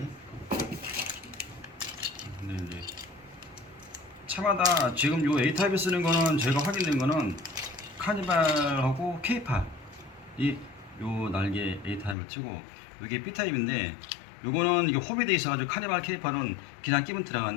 근데 이제 차마다 지금 요 A 타입에 쓰는 거는 제가 확인된 거는 카니발하고 K8 이요 날개 A 타입을 치고 이게 B 타입인데 요거는 이게 호비돼 있어가지고 카니발 K8은 그냥 끼면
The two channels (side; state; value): right; drops out; at 12.2 s